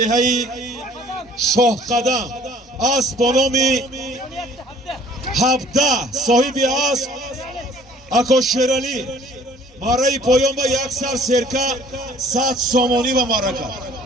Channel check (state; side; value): normal; both; correlation 0.54